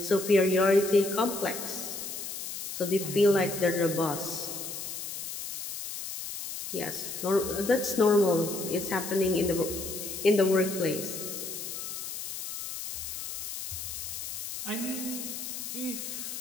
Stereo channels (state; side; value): noise; left; hiss, 7 dB below the sound